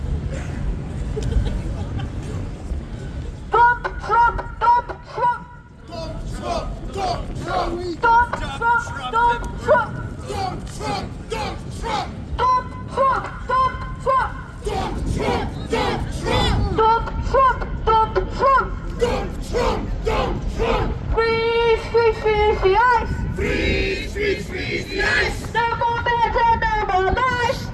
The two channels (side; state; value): both; identical; correlation 1.00